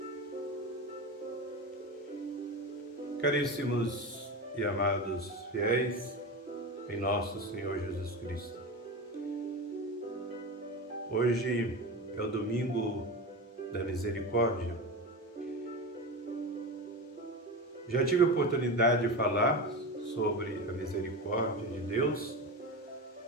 Caríssimos e amados fiéis em nosso Senhor Jesus Cristo, hoje é o domingo da misericórdia. Já tive a oportunidade de falar sobre a misericórdia de Deus,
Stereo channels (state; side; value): normal; both; correlation 0.24